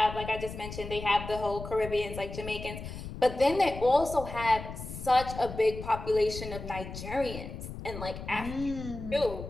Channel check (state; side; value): noise; left; rumble, 10 dB below the sound